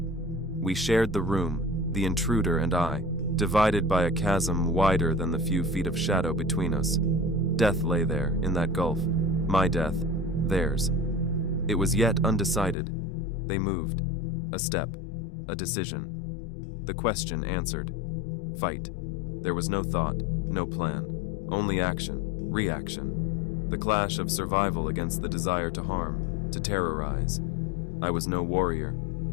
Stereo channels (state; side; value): drops out; right; at 12.8 s